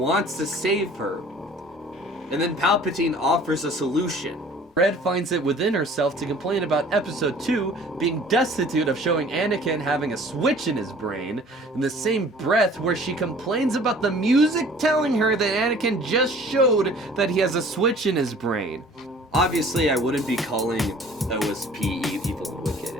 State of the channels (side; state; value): both; normal; correlation 0.50